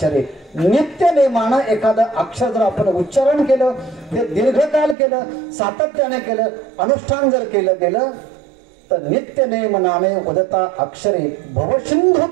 नित्य नेमानं एखादं अक्षर जर आपण उच्चारण केलं, ते दीर्घकाल केलं, सातत्याने केलं, अनुष्ठान जर केलं गेलं तर नित्य नेम नामे वदता अक्षरे भवसिंधू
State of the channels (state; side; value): drops out; left; at 5.0 s